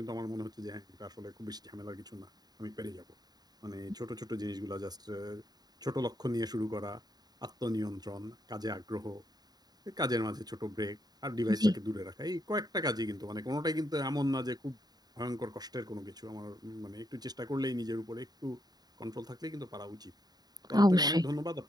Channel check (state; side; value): late; left; 0.19 ms